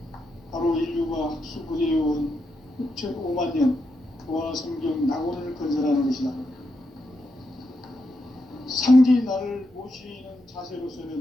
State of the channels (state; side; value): normal; both; correlation 0.84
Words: 바로 인류가 학수고대해온 6,500만 년 조화 성경 낙원을 건설하는 것이다. 상제인 나를 모시는